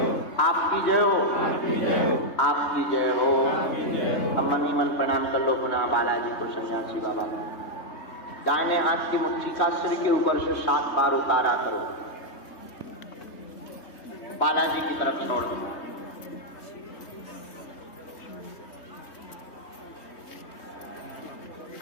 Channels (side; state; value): right; late; 3.2 ms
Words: आपकी जय हो। अब मन ही मन प्रणाम कर लो पुनः बालाजी को, सन्यासी बाबा का। दाहिने हाथ की मुट्ठी का सिर के ऊपर से 7 बार उतारा करो, बालाजी की तरफ छोड़ दो।